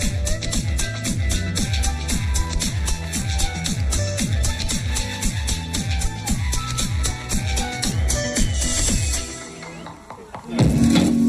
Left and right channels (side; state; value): both; identical; correlation 1.00